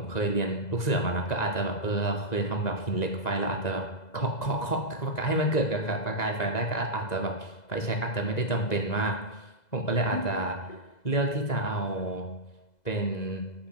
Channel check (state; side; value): late; right; 1.9 ms